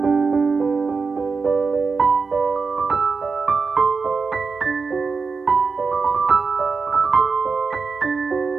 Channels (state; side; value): quieter; left; 4.8 dB